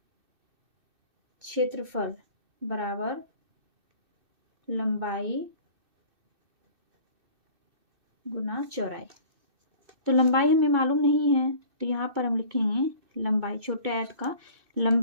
क्षेत्रफल बराबर लंबाई गुना चौड़ाई। तो लंबाई हमें मालूम नहीं है तो यहाँ पर हम लिखेंगे लंबाई, छोटे आयत का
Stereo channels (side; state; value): left; late; 2.6 ms